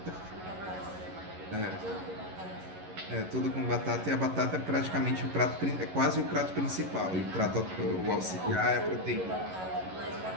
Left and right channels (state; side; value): late; left; 11 ms